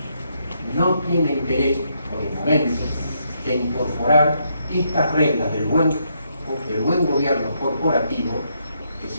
no tiene interés por el momento de incorporar estas reglas del buen gobierno corporativo, que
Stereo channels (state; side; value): inverted; both; correlation -0.77